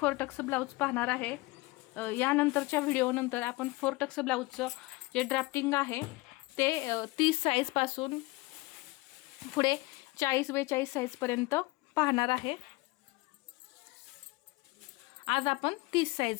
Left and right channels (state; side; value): quieter; right; 22.7 dB